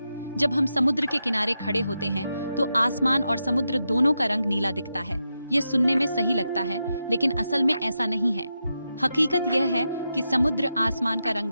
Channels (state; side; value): inverted; both; correlation -0.87